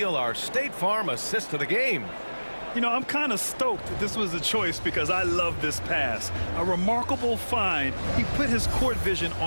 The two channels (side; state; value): both; inverted; correlation -1.00